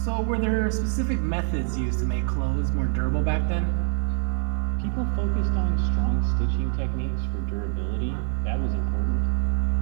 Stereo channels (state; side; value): silent; left; 62 dB below the other